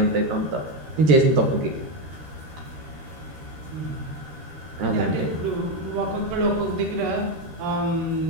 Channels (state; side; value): late; left; 13 ms